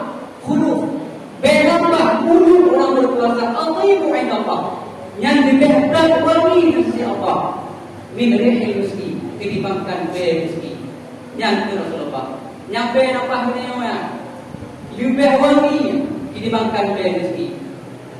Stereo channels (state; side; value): identical; both; correlation 1.00